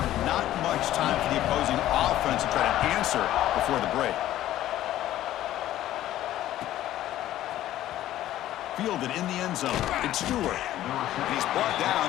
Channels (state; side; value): quieter; right; 13.5 dB